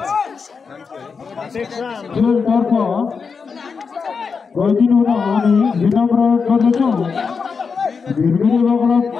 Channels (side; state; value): right; quieter; 5.4 dB